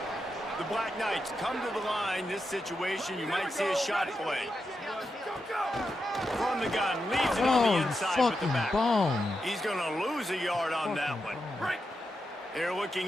The Black Knights come to the line. This situation, you might see a shot play. From the gun, leaves it on the inside with the back. He's going to lose a yard on that one. They're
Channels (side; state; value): both; normal; correlation 0.87